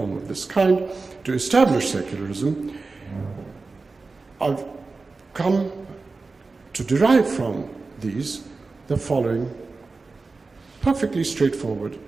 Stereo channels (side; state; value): left; quieter; 3.9 dB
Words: of this kind, to establish secularism, I've come to derive from these the following perfectly straightforward